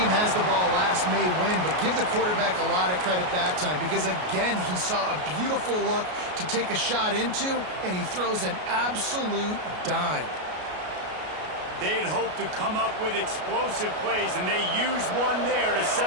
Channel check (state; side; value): late; left; 33 ms